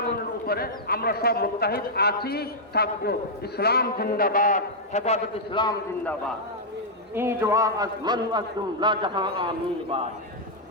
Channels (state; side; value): normal; both; correlation -0.06